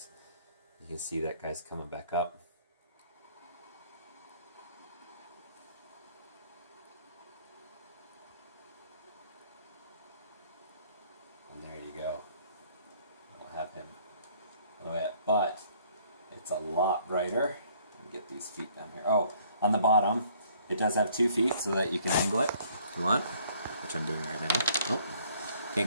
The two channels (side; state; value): both; inverted; correlation -0.61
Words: You can see that guy's coming back up. And there you go. I'll have him a little bit, but it's a lot brighter. Get these feet down here. Oh, on the bottom, it does have 2 feet so that you can angle it if you want, which I'm doing right now. Oh,